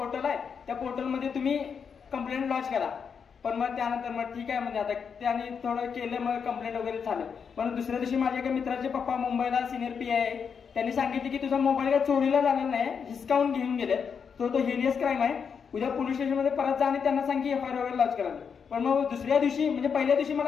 आहे त्या पोर्टलमध्ये तुम्ही कंप्लेंट लॉन्च करा. पण मग त्यानंतर मग ठीक आहे म्हणजे आता त्याने थोडं केलं मग कंप्लेंट वगैरे झालं. पण दुसऱ्या दिवशी माझ्या एका मित्राचे पप्पा मुंबईला सिनियर PI आहे त्यांनी सांगितले की तुझा मोबाईल काय चोरीला झालेला नाही हिसकावून घेऊन गेले तो हिनियस क्राईम आहे उद्या पोलीस स्टेशनमध्ये परत जा आणि त्यांना सांग की FIR वगैरे लॉन्च करा. पण मग दुसऱ्या दिवशी म्हणजे पहिल्या दिवशी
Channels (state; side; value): quieter; right; 6.5 dB